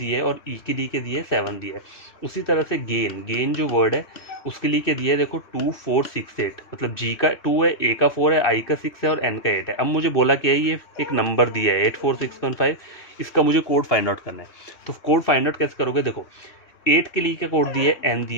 है, और E के लिए क्या दिया है 7 दिया है। उसी तरह से गेन जो वर्ड है उसके लिए क्या दिया है, देखो 2468, मतलब G का 2 है, A का 4 है, I का 6 है और N का 8 है। अब मुझे बोला क्या है, ये एक नंबर दिया है 84615, इसका मुझे कोड फाइंड आउट करना है। तो कोड फाइंड आउट कैसे करोगे, देखो 8 के लिए क्या कोड दिया है, N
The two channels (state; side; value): late; right; 3.1 ms